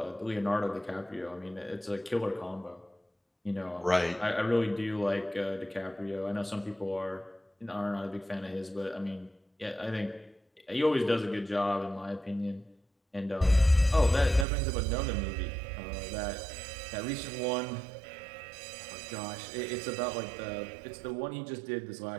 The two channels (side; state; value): left; drops out; at 14.5 s